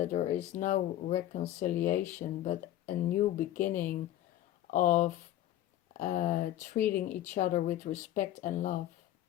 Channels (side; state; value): right; quieter; 13.0 dB